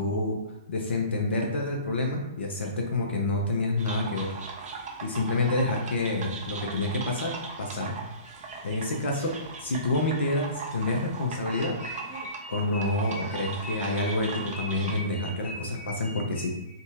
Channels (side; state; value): both; inverted; correlation -0.43